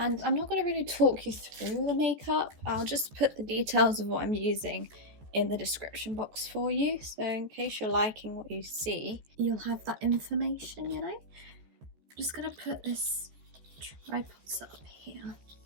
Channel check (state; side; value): late; left; 14 ms